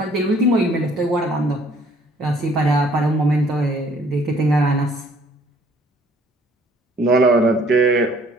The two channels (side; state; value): both; normal; correlation 0.59